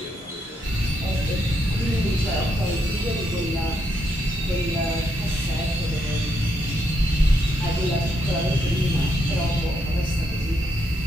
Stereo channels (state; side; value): normal; both; correlation 0.78